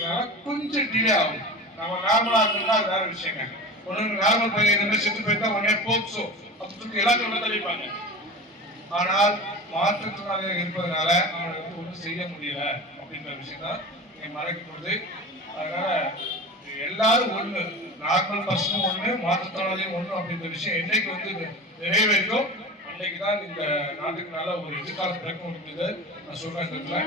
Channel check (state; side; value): normal; both; correlation 0.31